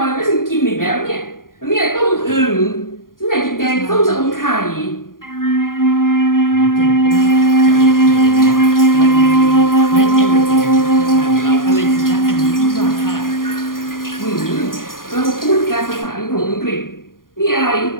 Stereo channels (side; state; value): right; late; 0.91 ms